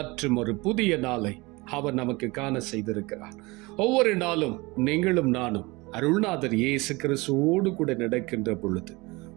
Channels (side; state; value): left; quieter; 23.8 dB